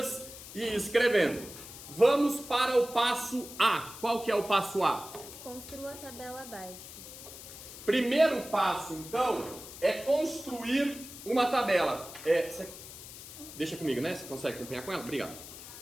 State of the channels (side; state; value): left; noise; hiss, 14 dB below the sound